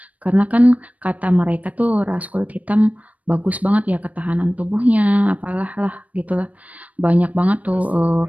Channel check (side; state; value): left; late; 0.069 ms